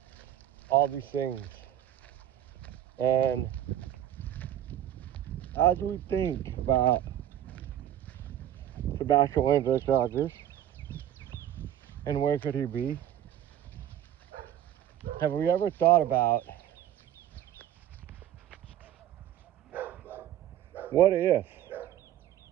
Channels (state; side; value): quieter; left; 11.3 dB